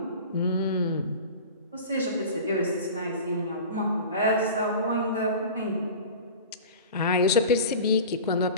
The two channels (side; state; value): both; inverted; correlation -0.35